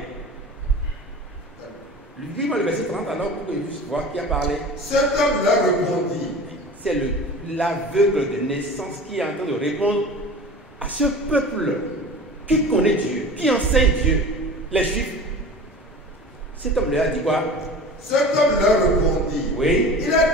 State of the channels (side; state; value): both; normal; correlation 0.37